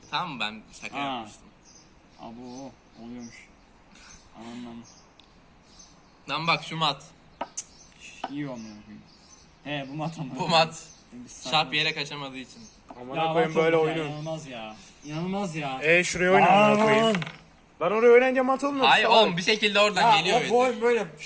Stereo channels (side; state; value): both; identical; correlation 1.00